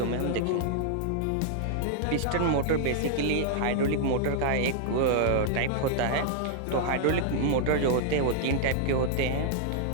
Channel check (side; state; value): both; different; correlation -0.01